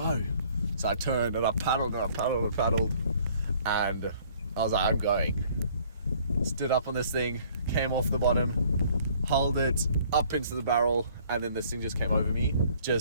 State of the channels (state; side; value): inverted; both; correlation -0.58